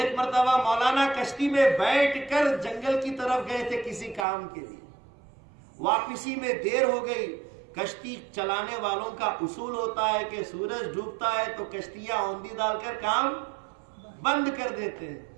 مرتبہ مولانا کشتی میں بیٹھ کر جنگل کی طرف گئے تھے کسی کام کے لیے، واپسی میں دیر ہو گئی۔ کشتی چلانے والوں کا اصول ہوتا ہے کہ سورج ڈوبتا ہے تو کشتیاں اوندھی ڈال کر کام بند کر دیتے ہیں،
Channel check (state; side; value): drops out; left; at 4.2 s